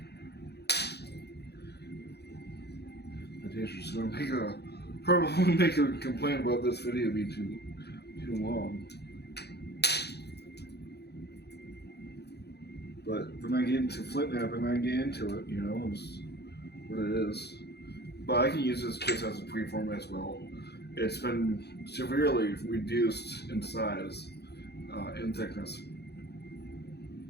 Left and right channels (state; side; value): late; right; 0.48 ms